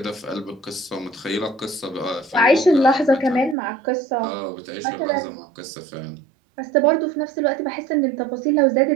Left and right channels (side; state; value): left; drops out; at 3.6 s